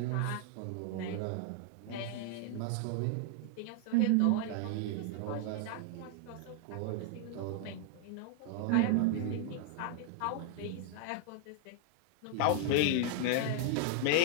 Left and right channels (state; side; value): different; both; correlation 0.00